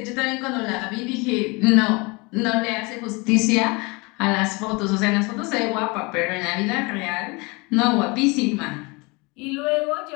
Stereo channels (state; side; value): quieter; right; 27.3 dB